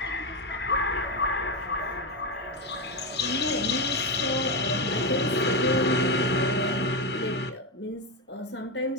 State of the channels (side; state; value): both; normal; correlation 0.11